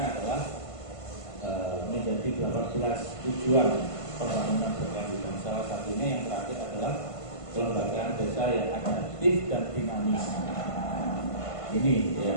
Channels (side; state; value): right; late; 1.5 ms